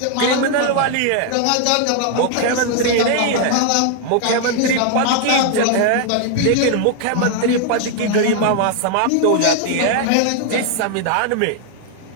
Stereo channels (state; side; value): different; both; correlation 0.00